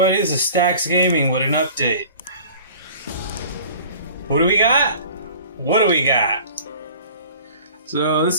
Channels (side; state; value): both; inverted; correlation -0.45